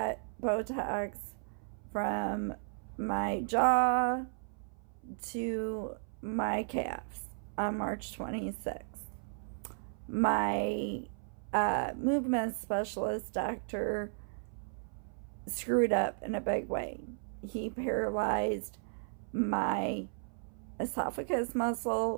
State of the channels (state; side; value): silent; left; 55 dB below the other